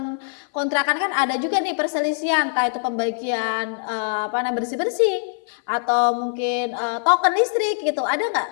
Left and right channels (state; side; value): silent; right; 57 dB below the other